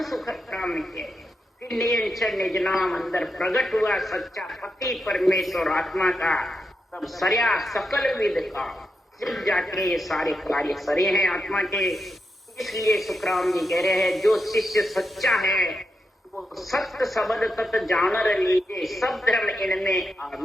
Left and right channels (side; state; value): both; normal; correlation 0.86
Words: सुखराम के फिर नियंत्रण निज नाम अंदर प्रकट हुआ सच्चा पति परमेश्वर आत्मा का, तब सरया सकल विद का सिर्फ जाके ये सारे कार्य सरे हैं आत्मा के। इसलिए सुखराम जी कह रहे हैं जो शिष्य सच्चा है वो सत्य शब्द तत् जानर लीजिए सब धर्म इनमें